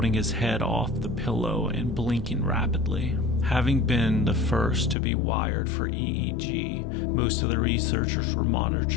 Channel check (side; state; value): right; drops out; at 5.0 s